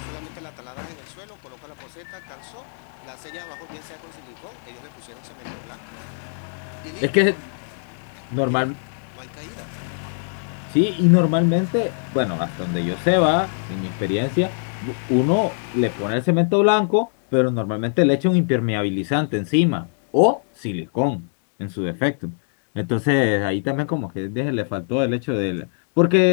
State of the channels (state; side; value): silent; right; digital silence